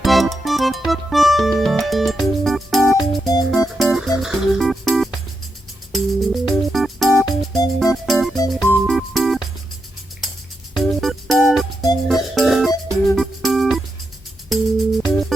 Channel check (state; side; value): normal; both; correlation 0.85